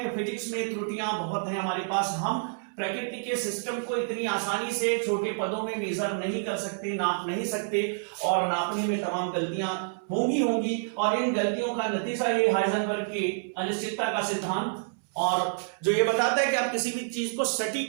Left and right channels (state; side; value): silent; left; 59 dB below the other